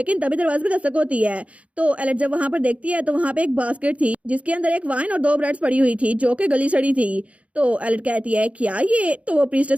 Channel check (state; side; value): late; left; 0.064 ms